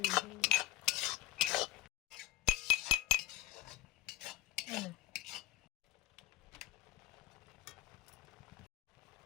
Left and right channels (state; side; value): quieter; right; 15.7 dB